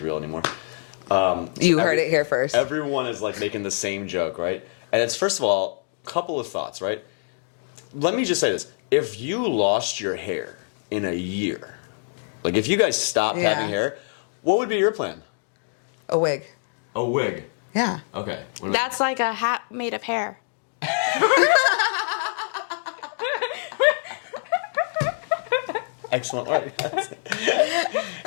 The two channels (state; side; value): silent; right; digital silence